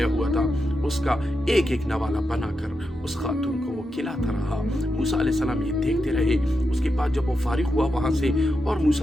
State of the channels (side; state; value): both; normal; correlation 0.86